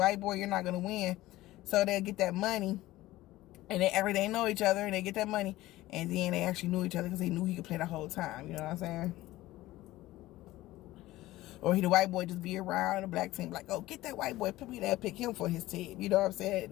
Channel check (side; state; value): right; quieter; 17.0 dB